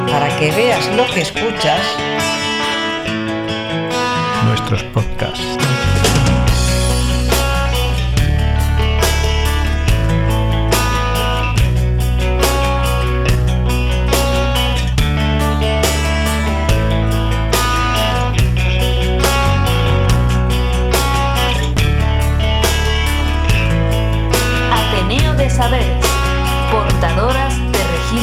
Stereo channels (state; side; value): identical; both; correlation 1.00